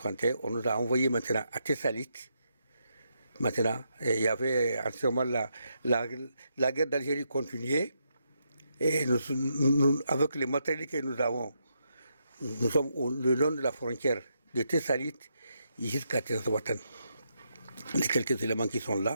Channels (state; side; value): inverted; both; correlation -0.80